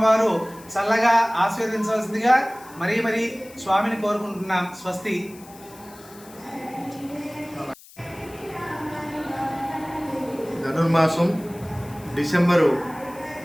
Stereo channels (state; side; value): noise; left; hiss, 22 dB below the sound